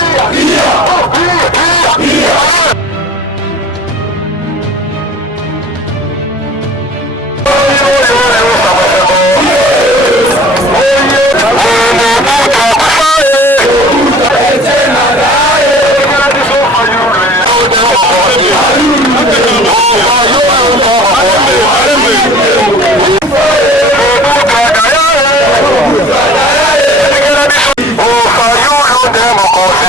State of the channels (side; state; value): both; normal; correlation 0.45